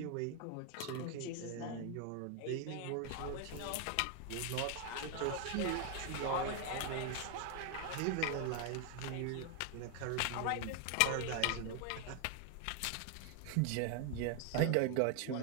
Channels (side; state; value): both; different; correlation 0.01